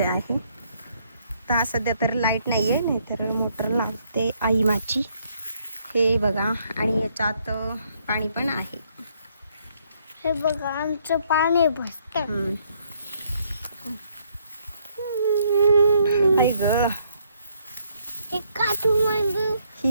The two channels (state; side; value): inverted; both; correlation -0.69